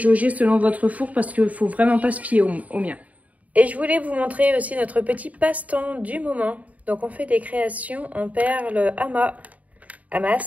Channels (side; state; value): left; late; 0.071 ms